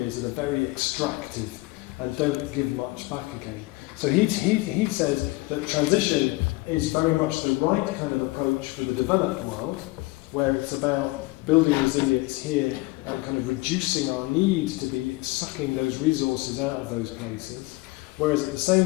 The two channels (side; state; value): right; quieter; 22.1 dB